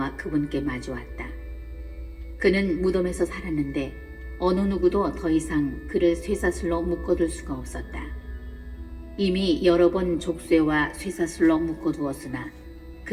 그분께 마주왔다. 그는 무덤에서 살았는데 어느 누구도 더 이상 그를 쇠사슬로 묶어둘 수가 없었다. 이미 여러 번 족쇄와 쇠사슬로 묶어두었으나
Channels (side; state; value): both; identical; correlation 1.00